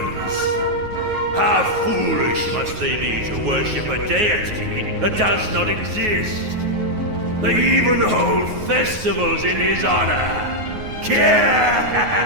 How foolish must they be to worship a deity that does not exist? They even hold festivals in his honor.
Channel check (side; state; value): left; late; 9.4 ms